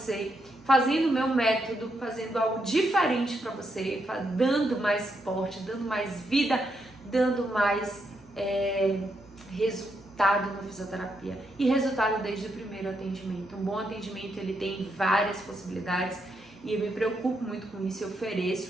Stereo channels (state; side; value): normal; both; correlation 0.80